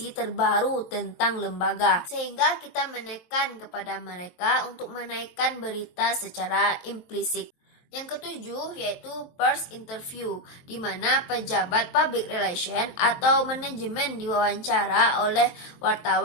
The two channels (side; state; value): right; late; 23 ms